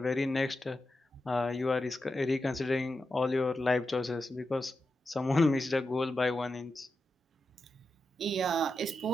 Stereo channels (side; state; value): both; normal; correlation 0.89